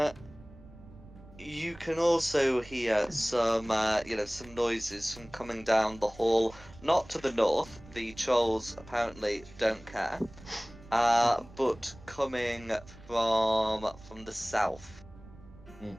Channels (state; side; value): noise; right; rumble, 20 dB below the sound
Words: you can also hear some some noises from coming down the hall, not to the north. The trolls apparently don't care. But coming from the south.